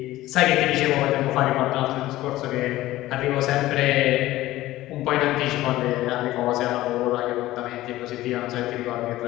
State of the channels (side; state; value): right; quieter; 16.2 dB